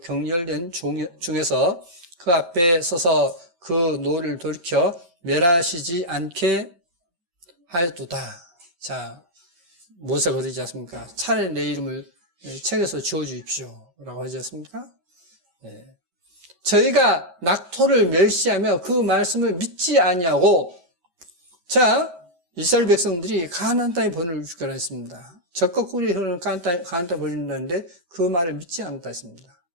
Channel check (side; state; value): left; late; 5.1 ms